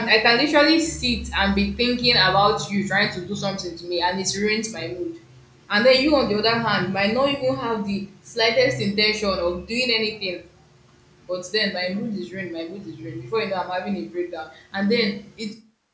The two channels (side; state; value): both; identical; correlation 1.00